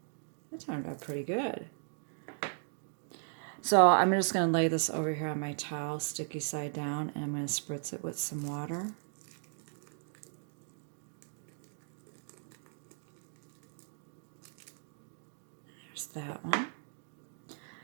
That turned out pretty good. So I'm just going to lay this over here on my towel, sticky side down, and I'm going to spritz it with some water. There's that one.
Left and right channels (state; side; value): silent; left; digital silence